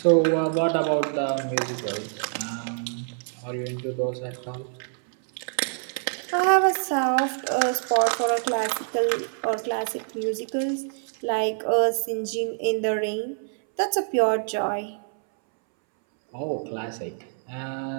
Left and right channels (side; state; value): left; silent; 61 dB below the other